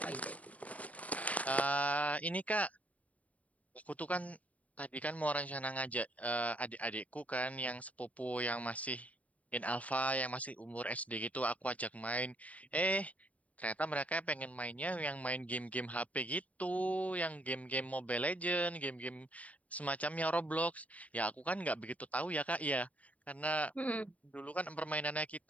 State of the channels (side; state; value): right; late; 0.069 ms